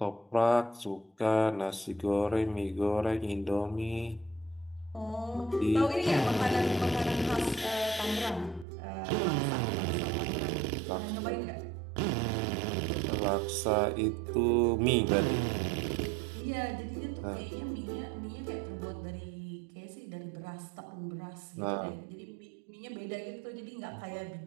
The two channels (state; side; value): drops out; left; at 8.7 s